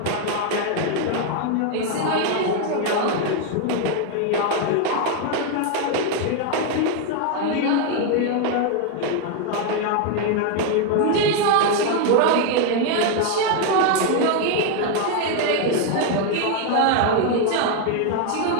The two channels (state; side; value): different; both; correlation 0.01